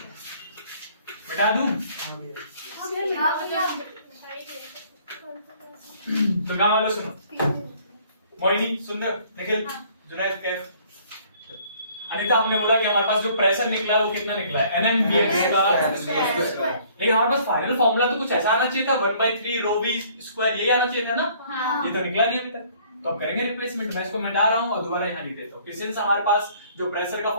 मिटा दूं? हाँ भैया। तो गाँव वालों सुनो, मोहिनी, सुंदर, निखिल, जुनैद, कैफ, अनीता, हमने बोला कि हमारे पास जो प्रेशर निकला है वो कितना निकला है, NMVX का। लेकिन हमारे पास फाइनल फॉर्मूला तो कुछ ऐसा आना चाहिए था, 1/3 ρv स्क्वायर, यही आना चाहिए था ना। ये तो निकला नहीं अभी तक, तो अब करेंगे रिप्लेसमेंट। मैं इसको मिटा रहा हूँ और दोबारा यहाँ लिख देता हूँ। सिंस हमारे पास जो प्रेशर का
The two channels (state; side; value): inverted; both; correlation -0.58